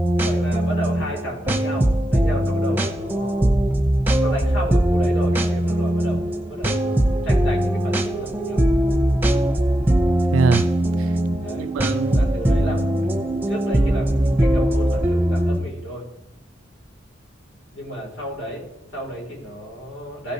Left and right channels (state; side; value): normal; both; correlation 0.88